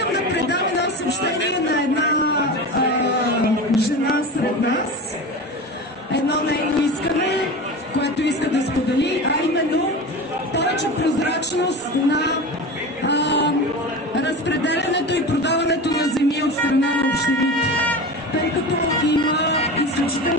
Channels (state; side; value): normal; both; correlation 0.29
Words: да предам едно съобщение на една жена сред нас. Едно нейно искане, което иска да сподели, а именно повече прозрачност на разпределянето и продаването на земи от страна на общините. Тъй като има